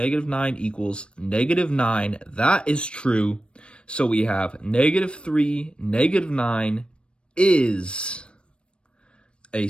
equals -9. That is true. So we have -3, -9 is a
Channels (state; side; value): late; right; 0.057 ms